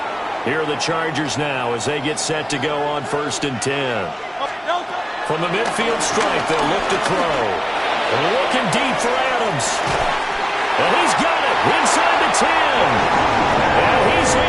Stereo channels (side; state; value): both; identical; correlation 1.00